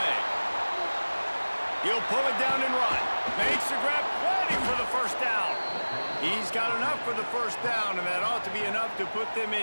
He'll pull it down and run. Makes the grab, waiting for the first down. He's got enough for the first down, and that ought to be enough to put them in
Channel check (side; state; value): both; inverted; correlation -1.00